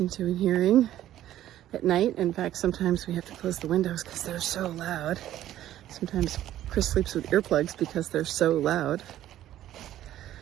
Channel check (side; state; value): left; quieter; 12.9 dB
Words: to and hearing at night. In fact, sometimes we have to close the windows because they're so loud. Sometimes Chris sleeps with earplugs because they're so loud.